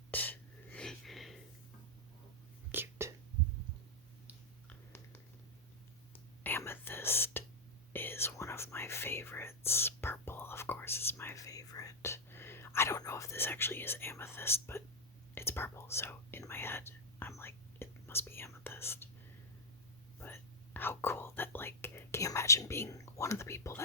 Cute. Amethyst is one of my favorites. Purple, of course, is my favorite. I don't know if this actually is amethyst, but it's purple, so in my head, I'm like, it must be amethyst. But how cool that, like, can you imagine being one of the people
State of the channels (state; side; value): normal; both; correlation -0.04